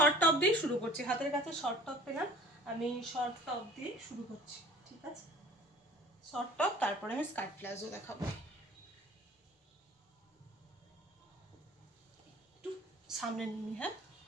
টপ দিয়ে শুরু করছি। হাতের কাছে শর্ট টপ পেলাম, আমি শর্ট টপ দিয়ে শুরু করছি, ঠিক আছে? শর্ট টপ, তারপরে আমি স্কার্ট প্লাজো দেখাবো। একটু সামনে নিয়ে, হ্যাঁ,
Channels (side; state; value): both; normal; correlation 0.48